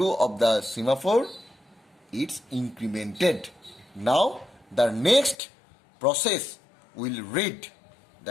of the semaphore is incremented. Now the next process will read.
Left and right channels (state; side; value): drops out; right; at 5.4 s